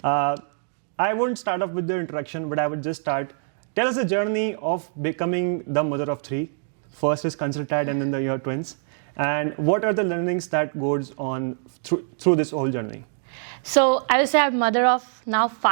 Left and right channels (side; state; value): left; silent; digital silence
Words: I won't start off with the introduction, but I would just start. Tell us the journey of becoming the mother of three. First is ConsultAdd and then your twins. And what are the learnings that goes on through this whole journey? So I would say I'm mother of now